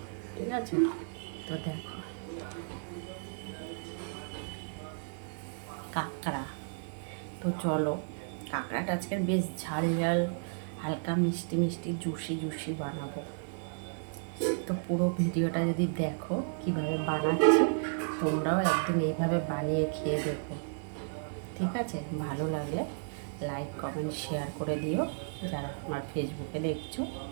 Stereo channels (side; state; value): left; silent; digital silence